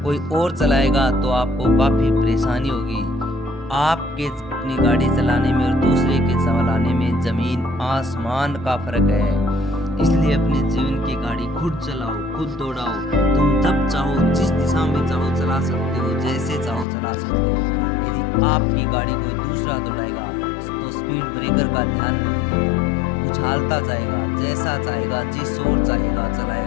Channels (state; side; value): drops out; right; at 16.9 s